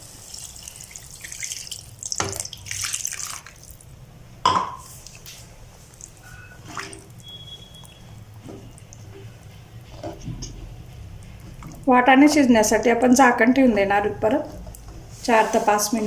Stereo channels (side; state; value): both; identical; correlation 1.00